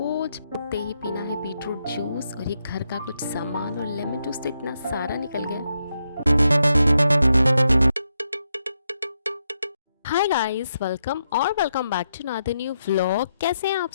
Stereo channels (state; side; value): inverted; both; correlation -0.82